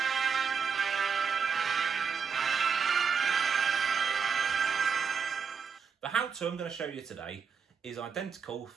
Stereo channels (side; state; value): left; quieter; 6.2 dB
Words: The how-to I'm going to show you today is identical